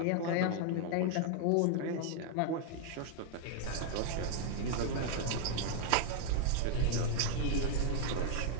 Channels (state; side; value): different; both; correlation 0.00